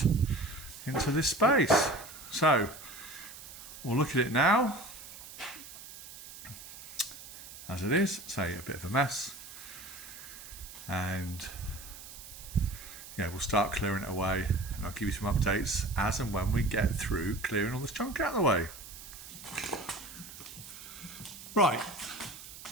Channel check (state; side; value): noise; right; hiss, 14 dB below the sound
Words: into this space. So we'll look at it now as it is. Say a bit of a mess, and yeah, we'll start clearing it away, and I'll give you some updates as and when we get through clearing all this junk out of the way. Right,